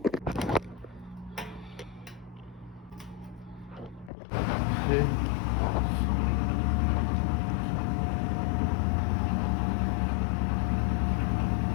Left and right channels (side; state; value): right; drops out; at 4.1 s